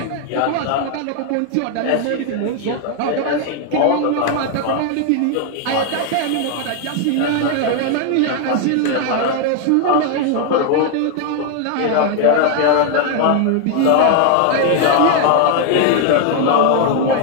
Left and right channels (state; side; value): different; both; correlation 0.00